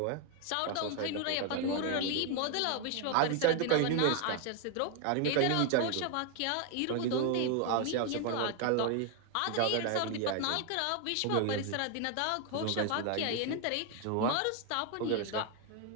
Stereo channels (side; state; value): both; different; correlation 0.01